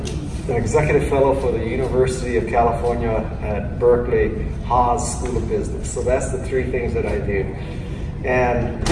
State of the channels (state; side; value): identical; both; correlation 1.00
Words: executive fellow for the University of California at Berkeley Haas School of Business. So that's the three things that I do. And